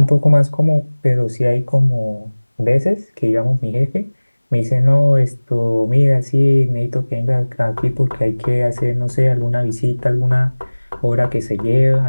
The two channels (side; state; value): both; inverted; correlation -1.00